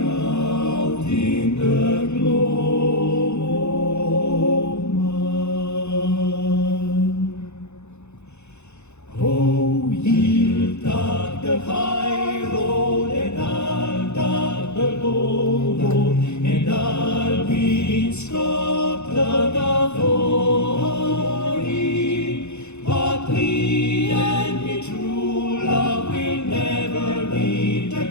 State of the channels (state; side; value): late; right; 0.81 ms